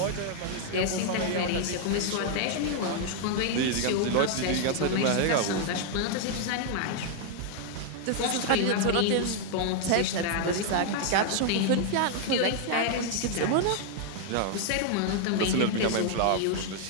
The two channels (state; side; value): different; both; correlation 0.00